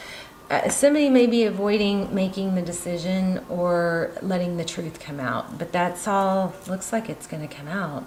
Somebody may be avoiding making the decision or letting the truth come out, but that's all, looks like it's going to come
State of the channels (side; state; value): both; identical; correlation 1.00